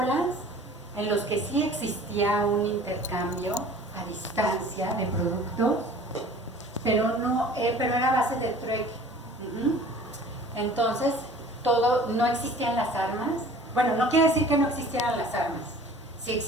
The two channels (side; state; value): both; normal; correlation 0.47